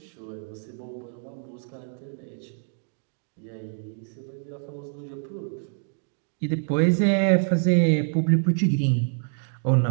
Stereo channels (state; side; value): silent; left; 61 dB below the other